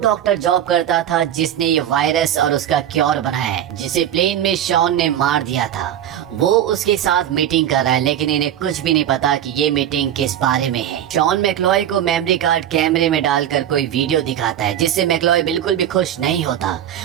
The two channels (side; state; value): left; quieter; 10.8 dB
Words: जॉब करता था जिसने ये वायरस और उसका क्योर बनाया है, जिसे प्लेन में शॉन ने मार दिया था। वो उसके साथ मीटिंग कर रहा है, लेकिन इन्हें कुछ भी नहीं पता कि ये मीटिंग किस बारे में है। शॉन मैक्लॉय को मेमोरी कार्ड कैमरे में डालकर कोई वीडियो दिखाता है जिससे मैक्लॉय बिल्कुल भी खुश नहीं होता